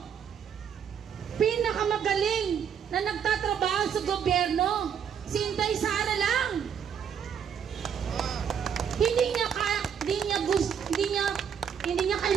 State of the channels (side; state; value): left; quieter; 7.9 dB